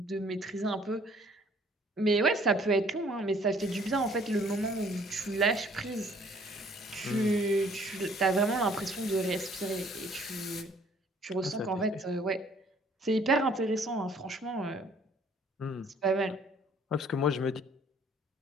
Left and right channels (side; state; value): both; normal; correlation 0.59